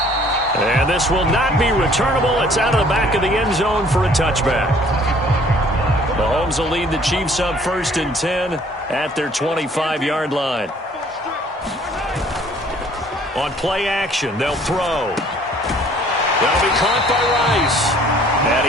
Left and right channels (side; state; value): both; normal; correlation 0.57